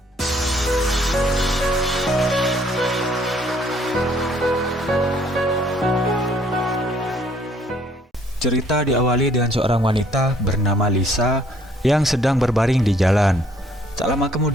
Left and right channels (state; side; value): normal; both; correlation 0.62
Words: Cerita diawali dengan seorang wanita bernama Lisa yang sedang berbaring di jalan. Tak lama